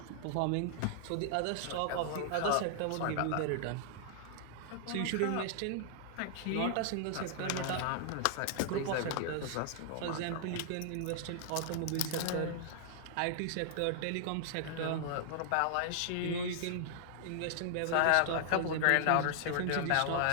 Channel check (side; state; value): both; different; correlation -0.01